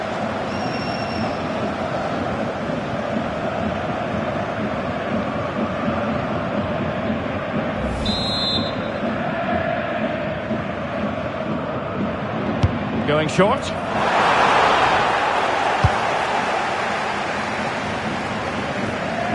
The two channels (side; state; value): both; identical; correlation 1.00